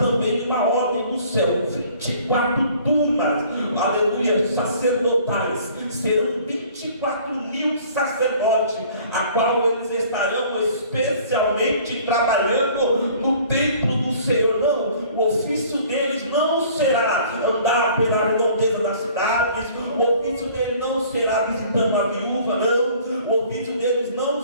uma ordem do céu: 24 turmas, aleluia, sacerdotais. Serão 24.000 sacerdotes, a qual eles estarão especialmente trabalhando no templo do Senhor. Não, o ofício deles não será andar pela redondeza das cidades, o ofício deles não será visitando a viúva, não, o ofício deles não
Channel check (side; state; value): both; inverted; correlation -0.53